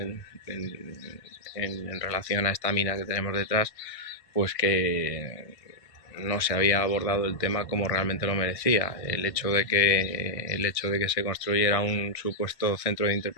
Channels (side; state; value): right; late; 1.6 ms